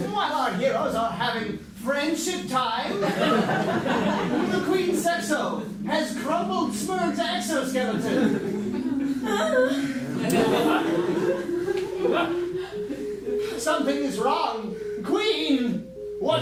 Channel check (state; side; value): identical; both; correlation 1.00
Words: While our heroes are having friendship time, the Queen Sexo has crumbled Smurg's exoskeleton. Something is wrong. Queen,